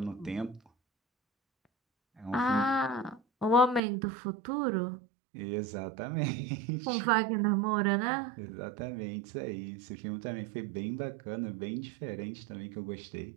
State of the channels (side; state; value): left; drops out; at 3.8 s